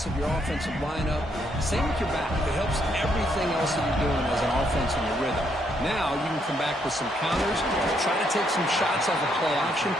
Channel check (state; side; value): normal; both; correlation 0.74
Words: of your offensive lineup. Same with your back. It helps everything else that you're doing as an offense in your rhythm. Now you can come back with some counters, try to take some shots off of play action,